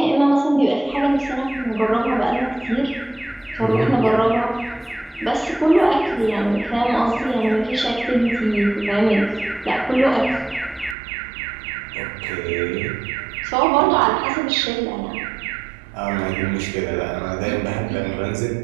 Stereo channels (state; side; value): drops out; left; at 11.0 s